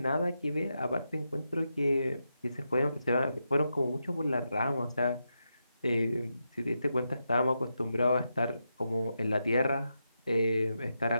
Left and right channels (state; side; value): inverted; both; correlation -0.86